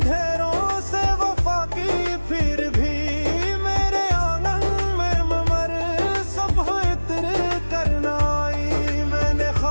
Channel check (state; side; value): inverted; both; correlation -1.00